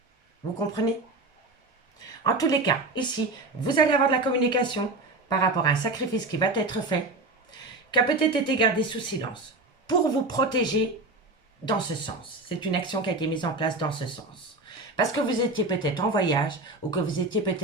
Vous comprenez? En tous les cas, ici, vous allez avoir de la communication par rapport à un sacrifice qui va être fait, qui a peut-être été gardé sous silence, pour vous protéger dans ce sens. C'est une action qui a été mise en place dans ce sens. Parce que vous étiez peut-être en voyage ou que vous étiez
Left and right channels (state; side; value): quieter; left; 3.1 dB